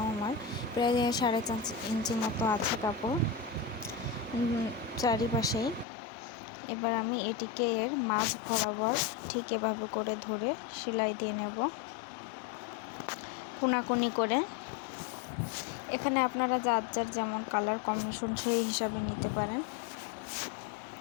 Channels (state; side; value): drops out; right; at 5.9 s